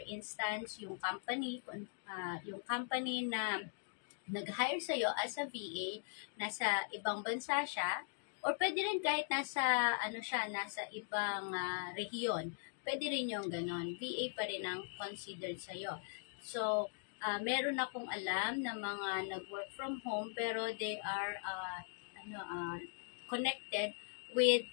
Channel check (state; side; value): silent; right; digital silence